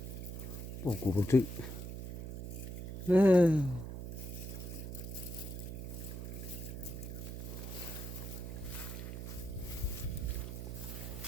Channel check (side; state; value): right; noise; hum, 7 dB below the sound